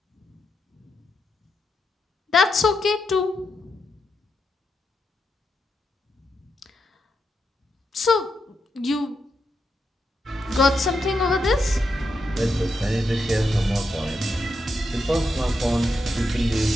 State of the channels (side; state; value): both; normal; correlation 0.84